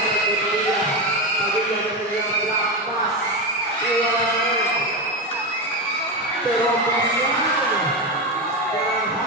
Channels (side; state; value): both; normal; correlation 0.15